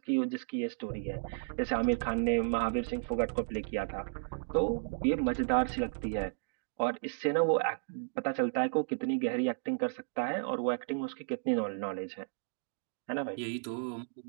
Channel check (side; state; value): left; silent; digital silence